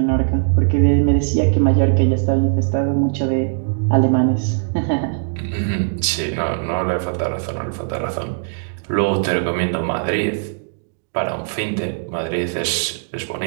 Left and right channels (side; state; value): left; silent; digital silence